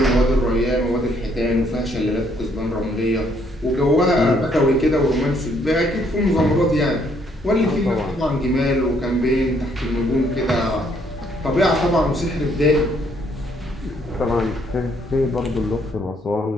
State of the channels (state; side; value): normal; both; correlation 0.68